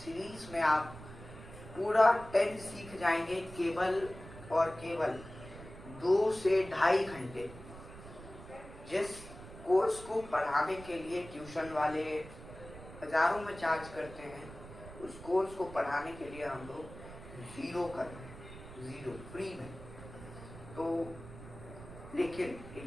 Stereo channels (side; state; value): right; noise; rumble, 15 dB below the sound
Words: में आप पूरा टेंस सीख जाएंगे केवल और केवल 2 से ढाई घंटे। जिस कोर्स को पढ़ाने के लिए ट्यूशन वाले हजारों में चार्ज करते हैं, उस कोर्स को पढ़ाने के लिए हम लोग 0 कर रहे हैं, 0 फ्री में। तो लेकिन